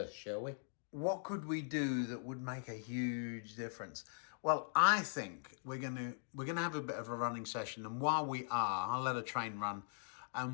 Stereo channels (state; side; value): silent; right; digital silence